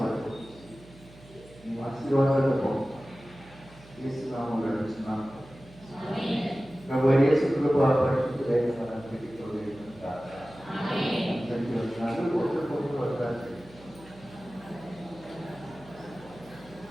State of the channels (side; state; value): right; noise; hum, 22 dB below the sound